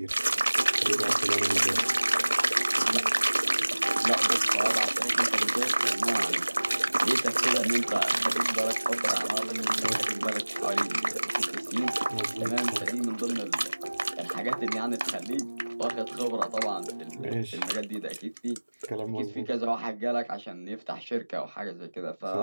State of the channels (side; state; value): both; inverted; correlation -1.00